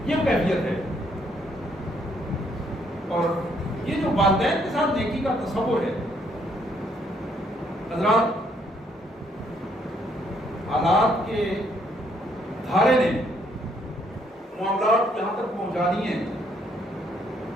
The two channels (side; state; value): both; normal; correlation 0.69